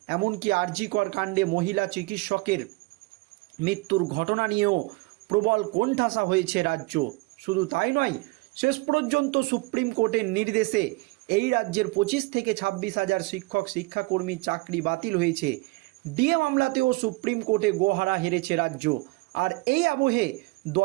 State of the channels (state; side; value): quieter; left; 24.2 dB